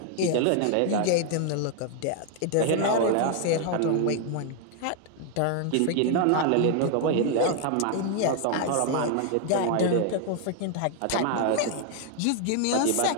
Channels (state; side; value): different; both; correlation 0.00